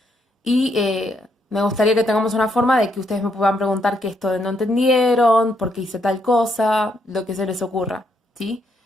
y me gustaría que tengamos una forma de que ustedes me puedan preguntar qué esto de no entendieron, por qué hice tal cosa, lo que se les ocurra, ¿sí?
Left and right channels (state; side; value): normal; both; correlation 0.75